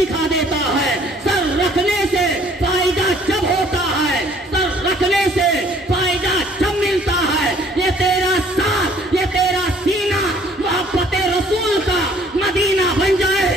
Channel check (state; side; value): normal; both; correlation 0.58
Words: دیتا ہے۔ سر رکھنے سے فائدہ جب ہوتا ہے، سر رکھنے سے فائدہ جب ملتا ہے۔ یہ تیرا ساتھ، یہ تیرا سینہ محبت رسول کا مدینہ بن جائے،